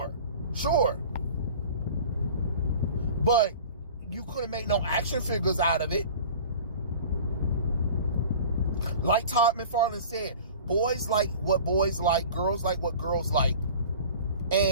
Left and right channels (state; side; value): inverted; both; correlation -0.41